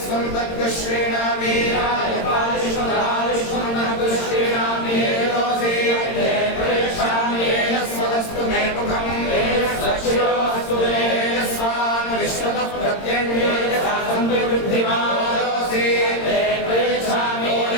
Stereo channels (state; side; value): late; right; 22 ms